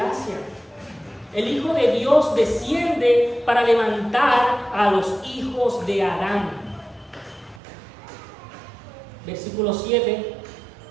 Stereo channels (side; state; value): left; drops out; at 7.6 s